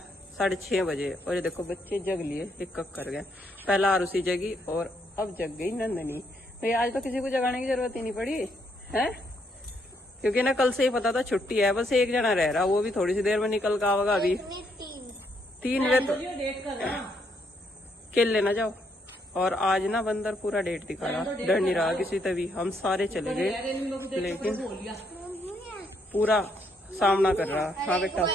6:30 बजे, और ये देखो बच्चे जग लिए, एक कक कर गए। पहला आरुषि जगी और अब जग गई नंदनी। तो आज तो किसी को जगाने की जरूरत ही नहीं पड़ी है, क्योंकि ना कल से ही पता था छुट्टी है। बस एक जना रह रहा, वो भी थोड़ी सी देर में निकल का आवेगा। अभी 3 बजे तो खेल लेना जाओ। और आज ना बंदर पूरा डेट दिखा रहा, डर नहीं रहा किसी तभी। हम सारे चले गए, लेकिन पूरा सामना कर रहा। हाँ बेटा,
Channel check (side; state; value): both; normal; correlation 0.74